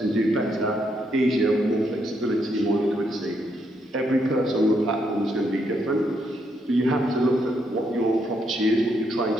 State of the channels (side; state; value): both; normal; correlation 0.76